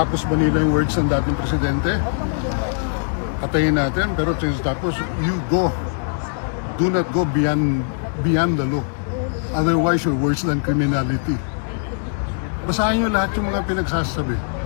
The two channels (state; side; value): silent; right; digital silence